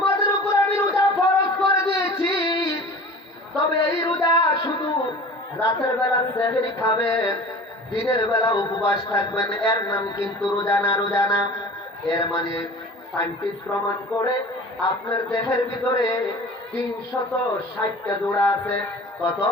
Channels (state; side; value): normal; both; correlation 0.40